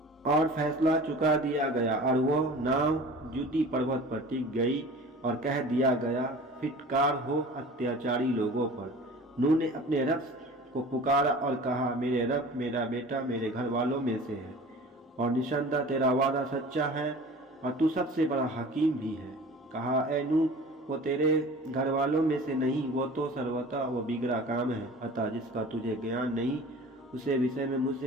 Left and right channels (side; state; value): both; normal; correlation 0.41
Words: गया और वो नाव जुटी पर्वत पर टिक गई और कह दिया गया फिटकार हो अत्याचारी लोगों पर। नूह ने अपने रब को पुकारा और कहा, मेरे रब, मेरा बेटा मेरे घर वालों में से है और निसंदेह तेरा वादा सच्चा है और तू सबसे बड़ा हकीम भी है। कहा, ए नूह, वो तेरे घर वालों में से नहीं, वो तो सर्वथा वो बिगड़ा काम है, अतः जिसका तुझे ज्ञान नहीं उसे विषय में